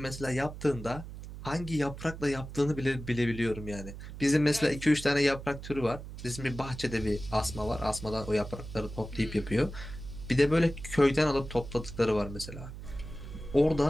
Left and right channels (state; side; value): noise; right; hum, 11 dB below the sound